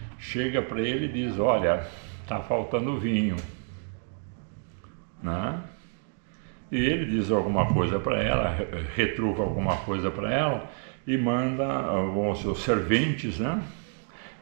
Chega para ele e diz: olha, está faltando vinho, né? E ele diz alguma coisa para ela, retruca alguma coisa para ela e manda os serventes, né,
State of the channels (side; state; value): left; silent; 58 dB below the other